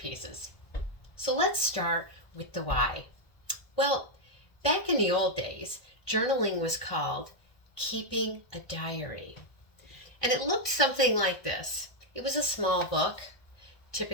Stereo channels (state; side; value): late; right; 1.6 ms